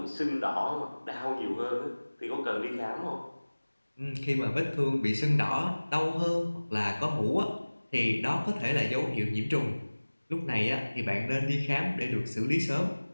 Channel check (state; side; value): inverted; both; correlation -1.00